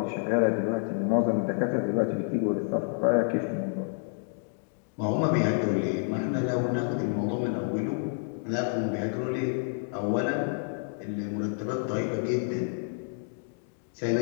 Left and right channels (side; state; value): right; silent; digital silence